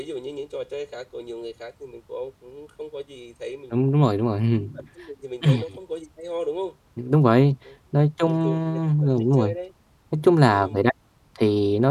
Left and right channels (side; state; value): both; identical; correlation 1.00